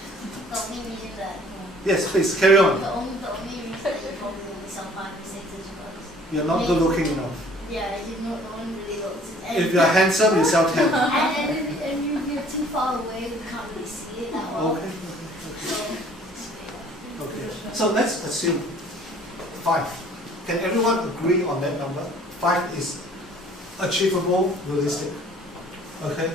The only reason that Yes, please carry on. the only reason that you probably only sell 5 to 6 is because You're not good looking enough. yeah, you know, no one really notices. And If you're handsome, you sell 10. and if you're too far away, we can't really see it that well. Okay. So, Okay. So let's assume 5. Can everyone agree on that number? 5 is achievable, realistic. Okay.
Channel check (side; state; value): both; normal; correlation 0.55